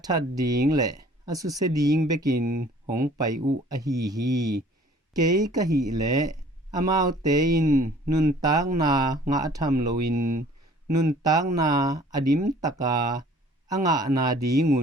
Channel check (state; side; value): normal; both; correlation 0.53